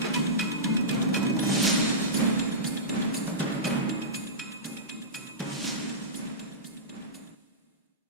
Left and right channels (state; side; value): normal; both; correlation -0.19